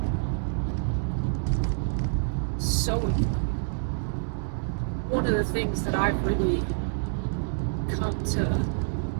So important. One of the things that I've really come to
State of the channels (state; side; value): silent; left; digital silence